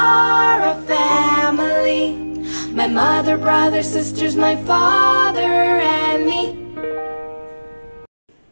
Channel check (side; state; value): both; inverted; correlation -1.00